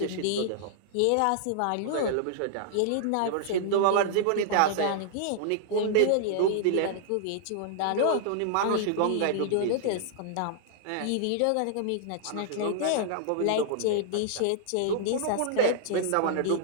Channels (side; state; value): both; different; correlation -0.01